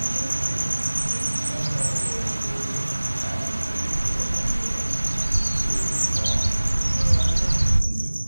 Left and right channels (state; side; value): inverted; both; correlation -1.00